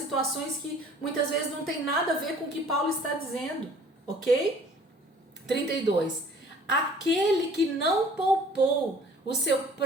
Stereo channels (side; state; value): both; normal; correlation 0.52